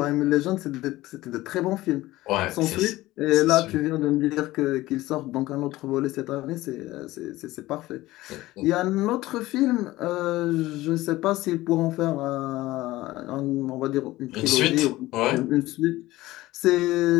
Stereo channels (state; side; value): quieter; right; 17.6 dB